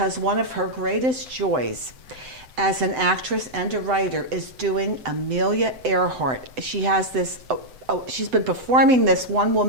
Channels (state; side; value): late; left; 7.9 ms